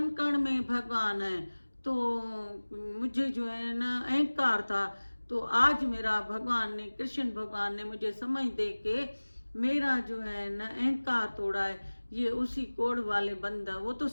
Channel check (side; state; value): both; inverted; correlation -1.00